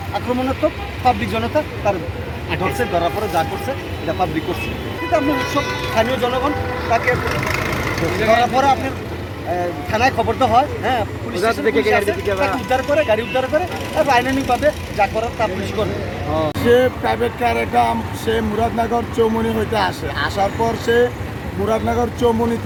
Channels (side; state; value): both; identical; correlation 1.00